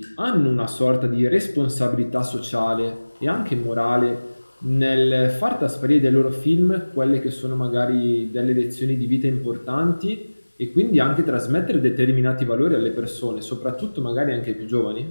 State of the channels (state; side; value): inverted; both; correlation -1.00